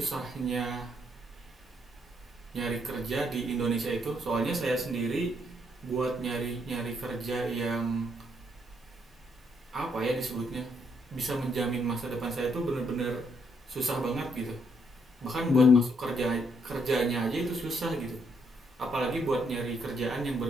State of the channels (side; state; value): both; normal; correlation 0.73